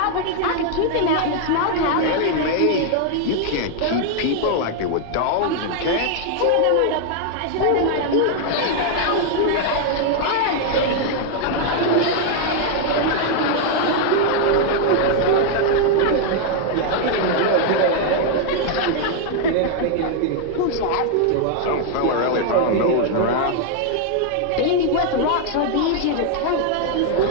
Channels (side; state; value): both; different; correlation 0.00